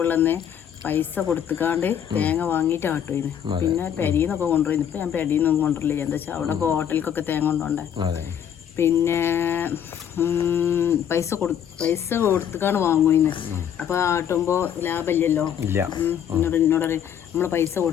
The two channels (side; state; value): right; quieter; 9.1 dB